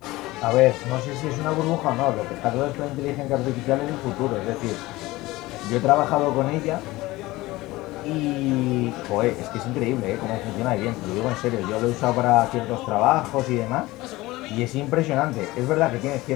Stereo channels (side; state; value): right; quieter; 19.4 dB